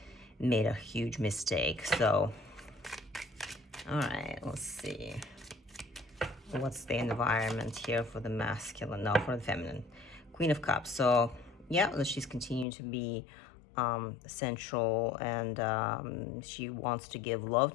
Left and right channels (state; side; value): drops out; right; at 12.7 s